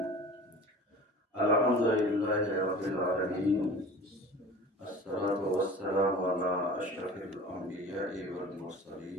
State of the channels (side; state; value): both; normal; correlation 0.40